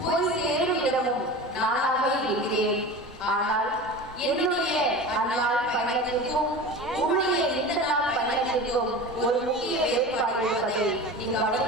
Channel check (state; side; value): normal; both; correlation 0.32